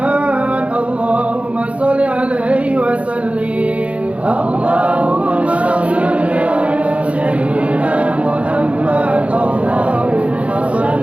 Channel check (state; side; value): late; left; 0.063 ms